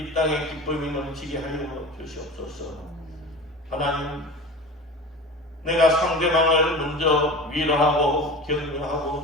땅에 기쁨이 넘치게 하여 주시옵소서. 하나님, 내가 상대방을 먼저 위로하고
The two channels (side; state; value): both; normal; correlation 0.34